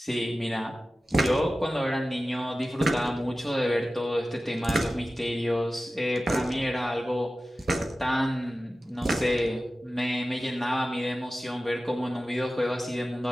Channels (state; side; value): normal; both; correlation 0.95